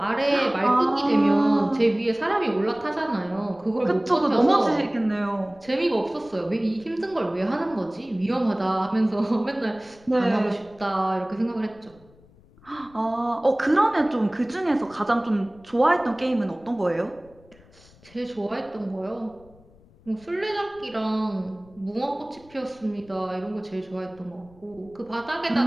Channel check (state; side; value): noise; left; rumble, 27 dB below the sound